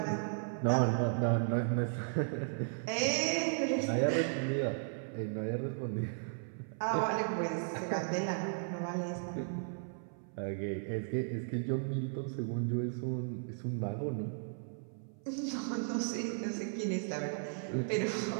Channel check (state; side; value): silent; left; 54 dB below the other